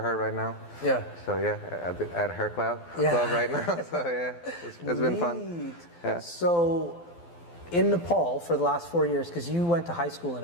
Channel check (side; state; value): right; late; 12 ms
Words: right now. Yeah. So yeah, at her club right now. So yeah, it's been fun. Yeah. So in Nepal for the last 4 years, because you went to high school in